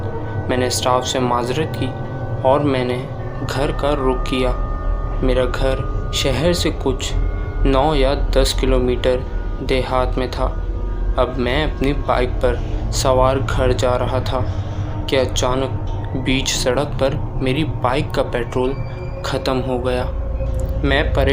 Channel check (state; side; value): identical; both; correlation 1.00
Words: میں نے اسٹاف سے معذرت کی اور میں نے گھر کا رخ کیا۔ میرا گھر شہر سے کچھ 9 یا 10 کلومیٹر دیہات میں تھا۔ اب میں اپنی بائک پر سوار گھر جا رہا تھا کہ اچانک بیچ سڑک پر میری بائک کا پیٹرول ختم ہو گیا۔ میں